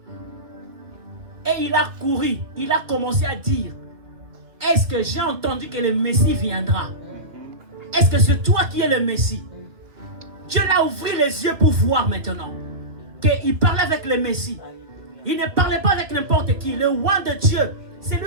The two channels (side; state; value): left; late; 2.3 ms